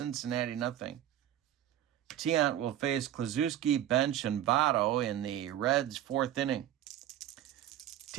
0. Tiant will face Klazuski, Bench, and Votto in the Reds' 4th inning.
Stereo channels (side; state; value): left; quieter; 11.8 dB